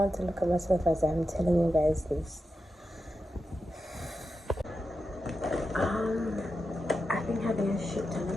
to look at myself as I'm telling you guys this. I've been having a shit ton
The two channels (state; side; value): normal; both; correlation 0.89